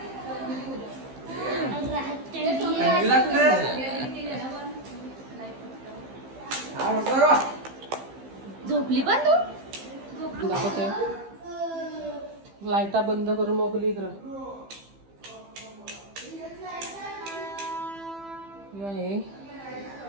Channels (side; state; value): left; late; 15 ms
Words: झोपली पण तू? दाखवते लाईटा बंद करून मोकली इकडं. हे